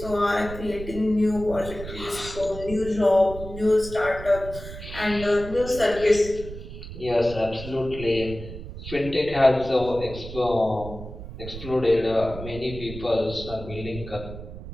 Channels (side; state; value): right; noise; rumble, 11 dB below the sound